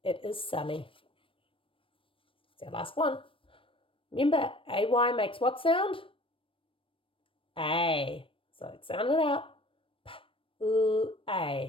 it is sunny. It's our last one. Remember, AY makes what sound? A. So let's sound it out.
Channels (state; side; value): late; right; 0.25 ms